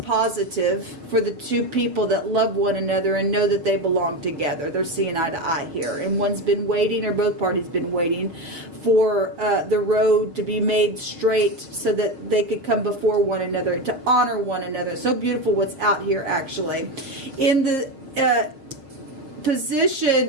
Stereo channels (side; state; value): left; late; 6.8 ms